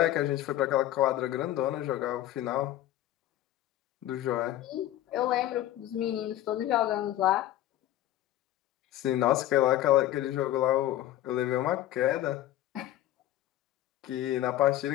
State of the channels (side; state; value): right; quieter; 13.6 dB